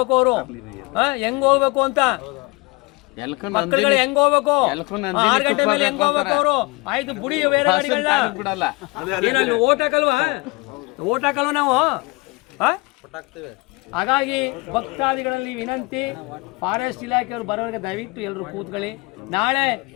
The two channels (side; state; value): right; quieter; 25.8 dB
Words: ಅವರು? ಹೆಂಗ್ ಹೋಗ್ಬೇಕು ಅಂತ ಮಕ್ಕಳುಗಳು ಹೆಂಗ್ ಹೋಗ್ಬೇಕು? 6 ಗಂಟೆ ಮೇಲೆ ಹೆಂಗ್ ಹೋಗ್ಬೇಕು ಅವರು? ಆಯ್ತು ಬುಡಿ, ಬೇರೆ ಗಾಡಿಗಳನ್ನ ಏನಲ್ಲಿ ಓಟ್ ಹಾಕಲ್ವ ನಾವು? ಹಾಗಾಗಿ ಭಕ್ತಾದಿಗಳಲ್ಲಿ ವಿನಂತಿ, ಫಾರೆಸ್ಟ್ ಇಲಾಖೆಯವರು ಬರೋರಿಗೆ ದಯವಿಟ್ಟು ಎಲ್ಲರೂ ಕೂತ್ಕೊಳ್ಳಿ. ನಾಳೆ